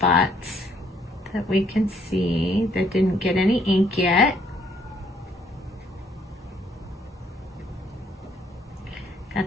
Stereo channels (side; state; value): both; normal; correlation 0.67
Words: that we can see that didn't get any ink yet.